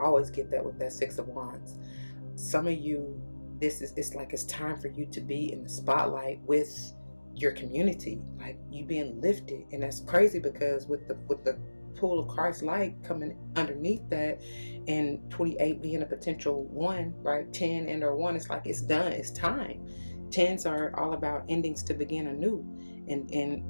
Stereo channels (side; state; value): both; inverted; correlation -1.00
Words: always get that with that 6 of Wands. Some of you, it's like it's time for you to be in the spotlight with your community, like you being lifted. And that's crazy because with the pool of Christ light coming underneath that, and 28 being a potential 1, right? 10 and or 1, it's like it's done, it's time. 10s are all about endings to begin anew,